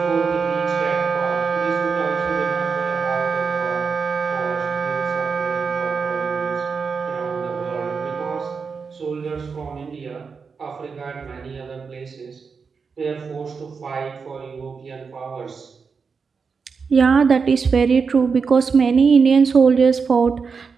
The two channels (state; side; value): quieter; left; 5.4 dB